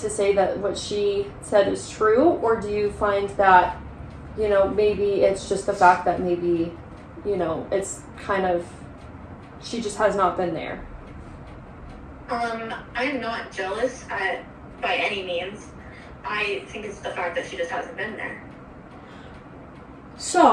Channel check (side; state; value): both; identical; correlation 1.00